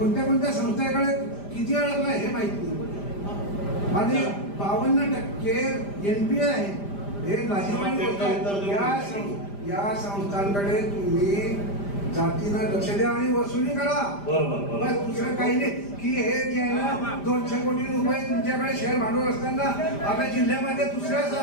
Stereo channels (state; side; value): late; right; 5.0 ms